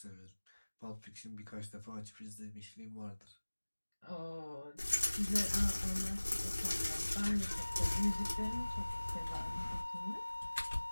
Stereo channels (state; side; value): inverted; both; correlation -1.00